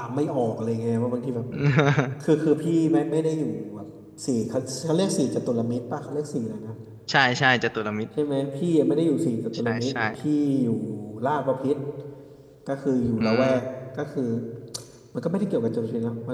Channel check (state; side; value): identical; both; correlation 1.00